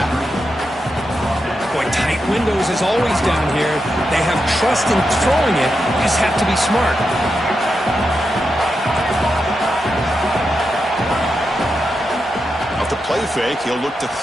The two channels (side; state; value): both; normal; correlation 0.87